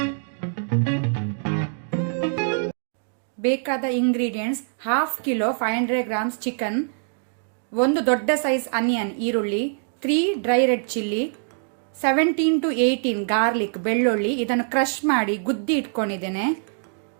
ಬೇಕಾದ ingredients: half kilo 500 grams chicken, ಒಂದು ದೊಡ್ಡ ಸೈಜ್ ಆನಿಯನ್ ಈರುಳ್ಳಿ, 3 dry red chilli, 17 to 18 garlic ಬೆಳ್ಳುಳ್ಳಿ, ಇದನ್ನು ಕ್ರಶ್ ಮಾಡಿ ಗುದ್ದಿ ಇಟ್ಕೊಂಡಿದ್ದೇನೆ,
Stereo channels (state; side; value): silent; left; digital silence